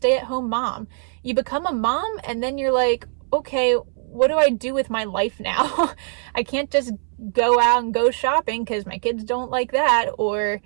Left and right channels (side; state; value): left; silent; 64 dB below the other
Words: mom. You become a mom and then you're like, okay, what do I do with my life now? I can't just go out and go shopping because my kids don't like that, or